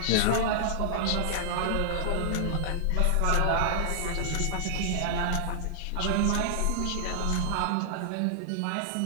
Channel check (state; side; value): different; both; correlation -0.01